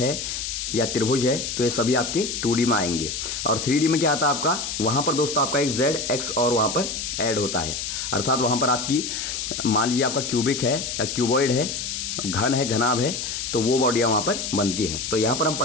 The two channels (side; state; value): left; noise; hiss, 4 dB below the sound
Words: या त्रिभुज है, तो ये सभी आपके 2D में आएंगे। और 3D में क्या आता है आपका, वहां पर दोस्तों आपका एक Z, X और वहां पर ऐड होता है। अर्थात वहां पर आपकी मान लीजिए आपका क्यूबिक है या क्यूबॉइड है, घन है, घनाभ है, तो वो बॉडियां वहां पर बनती हैं। तो यहां पर हम